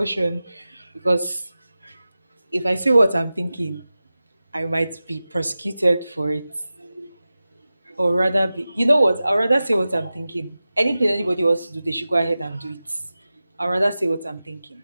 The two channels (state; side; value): inverted; both; correlation -0.95